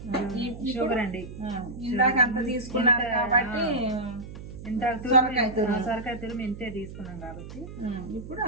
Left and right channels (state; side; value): noise; right; hum, 12 dB below the sound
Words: షుగర్ అండి. ఇందాక అంత తీసుకున్నారు కాబట్టి సొరకాయ తురుము ఇంతే తీసుకున్నాం కాబట్టి ఇప్పుడు